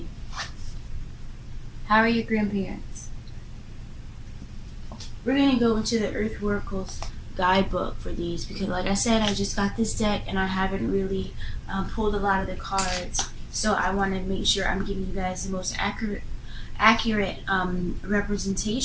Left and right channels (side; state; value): both; identical; correlation 1.00